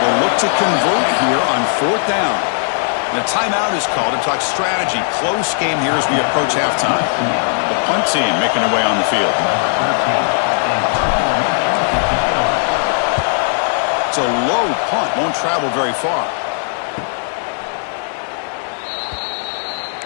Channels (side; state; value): right; silent; digital silence